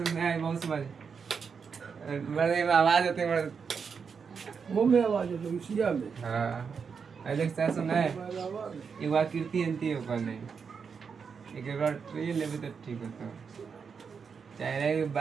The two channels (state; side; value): quieter; left; 6.0 dB